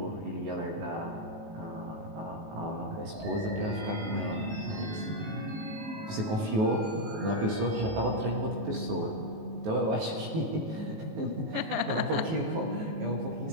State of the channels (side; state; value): left; late; 19 ms